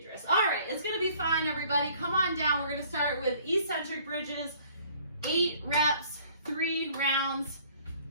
Dris. All right, it's going to be fine, everybody. Come on down. We're going to start with eccentric bridges, 8 reps. 3 rounds.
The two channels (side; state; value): both; inverted; correlation -0.57